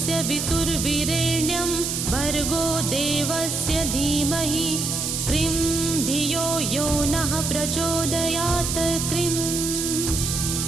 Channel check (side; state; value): right; noise; hiss, 2 dB below the sound